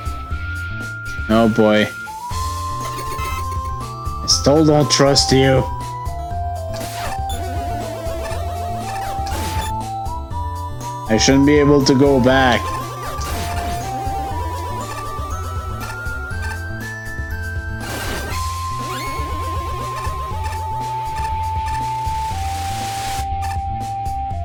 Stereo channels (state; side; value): identical; both; correlation 1.00